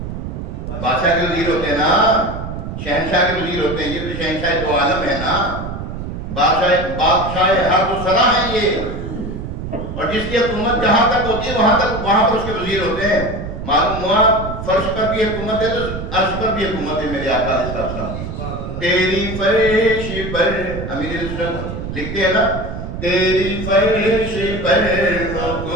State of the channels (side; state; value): right; noise; rumble, 7 dB below the sound